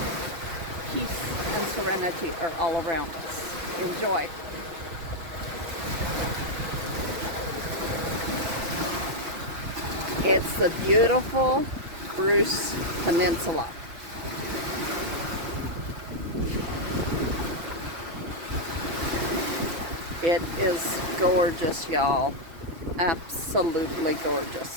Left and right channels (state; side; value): late; left; 6.0 ms